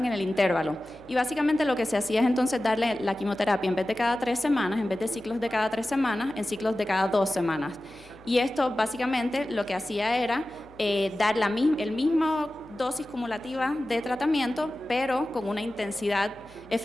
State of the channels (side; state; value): left; noise; hum, 25 dB below the sound